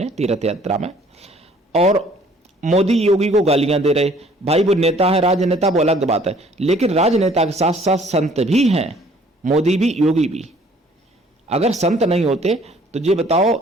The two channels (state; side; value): normal; both; correlation 0.57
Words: तीर्थ यात्रा में, और मोदी योगी को गालियां दे रहे। भाई वो नेता है, राजनेता, वो अलग बात है, लेकिन राजनेता के साथ साथ संत भी हैं, मोदी भी योगी भी। अगर संत नहीं होते तो ये बताओ,